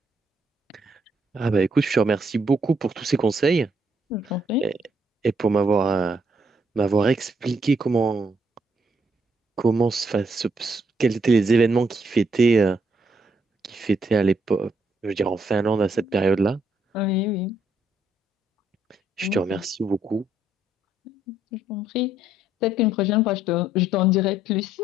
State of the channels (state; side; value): normal; both; correlation 0.72